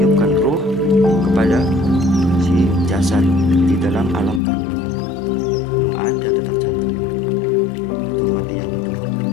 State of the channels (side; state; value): right; drops out; at 4.4 s